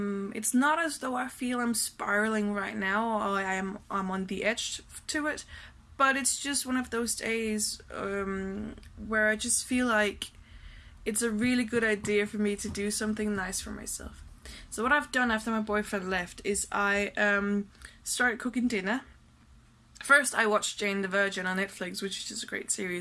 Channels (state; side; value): identical; both; correlation 1.00